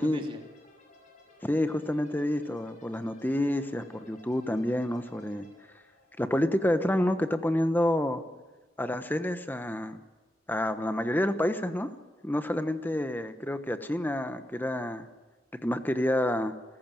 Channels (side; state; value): both; normal; correlation 0.88